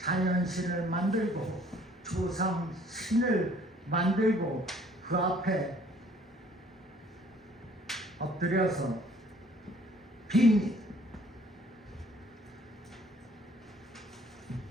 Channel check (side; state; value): both; normal; correlation 0.57